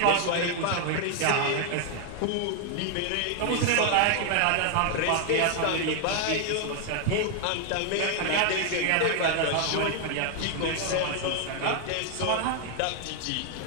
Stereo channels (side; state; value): both; different; correlation 0.00